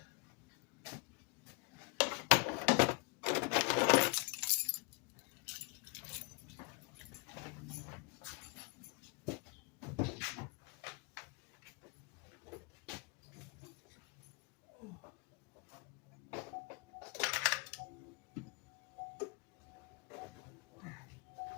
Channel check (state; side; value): quieter; right; 31.2 dB